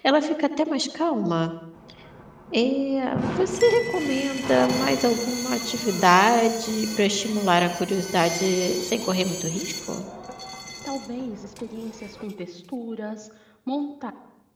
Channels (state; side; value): identical; both; correlation 1.00